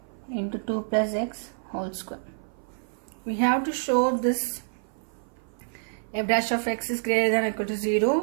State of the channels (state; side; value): silent; left; 55 dB below the other